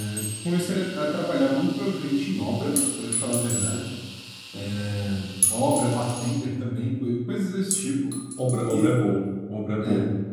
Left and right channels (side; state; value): both; identical; correlation 1.00